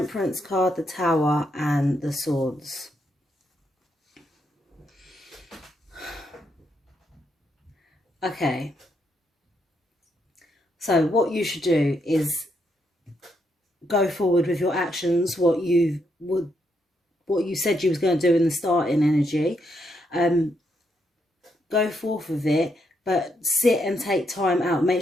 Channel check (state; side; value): normal; both; correlation 0.78